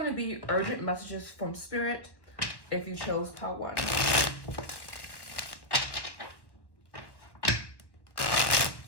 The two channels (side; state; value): right; late; 1.1 ms